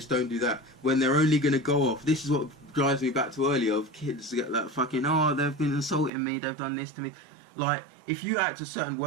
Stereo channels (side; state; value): left; drops out; at 6.1 s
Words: don't do that, when they're only gonna go off. This is what drives me back to earlier, of kids get that fucking, oh, they've been insulting me, they've done this to me. Like, if you act a certain